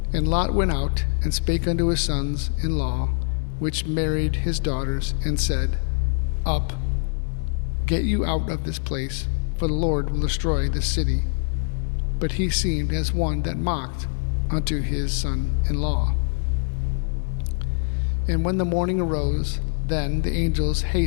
And Lot went out, and spake unto his sons-in-law, which married his daughters, and said, Up, get you out of this place, for the Lord will destroy this city. But he seemed as one that mocked unto his son-in-law. And when the morning arose, then the angels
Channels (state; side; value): silent; right; 63 dB below the other